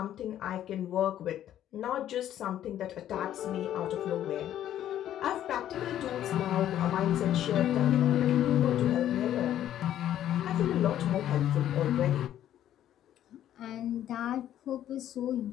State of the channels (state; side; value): quieter; right; 11.5 dB